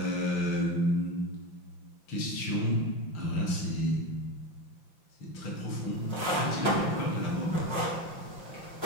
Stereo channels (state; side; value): late; right; 5.8 ms